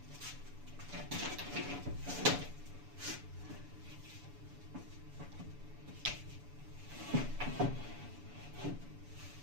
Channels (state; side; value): late; left; 7.0 ms